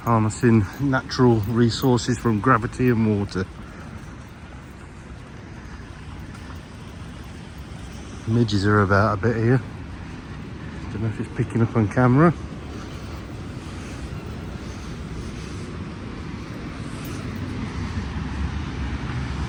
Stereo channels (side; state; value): both; identical; correlation 1.00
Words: Harnessing natural resources from gravity and water. Midges are about a bit here. Don't know if it's picking up on camera.